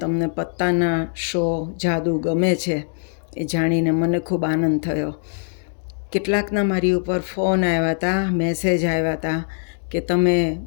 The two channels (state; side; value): silent; right; digital silence